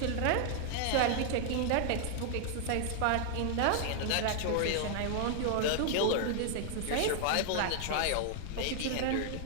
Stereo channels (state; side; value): different; both; correlation 0.00